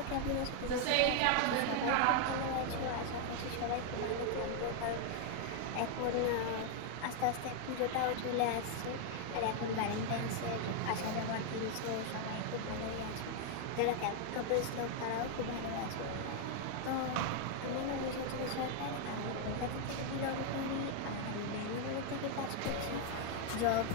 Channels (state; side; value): different; both; correlation 0.00